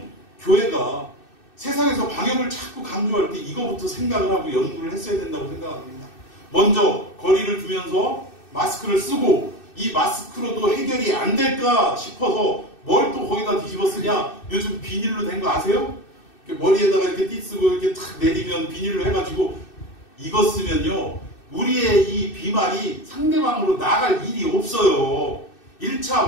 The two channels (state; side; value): late; right; 2.6 ms